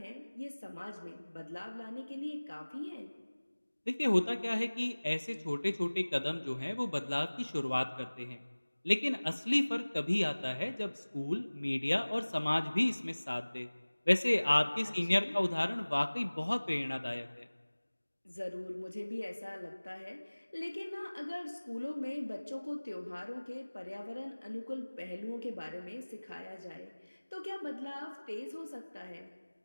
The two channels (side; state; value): both; inverted; correlation -1.00